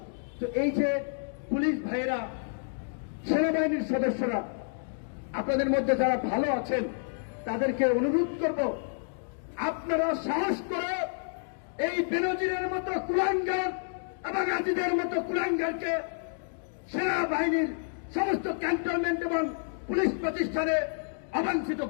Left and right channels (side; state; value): right; silent; digital silence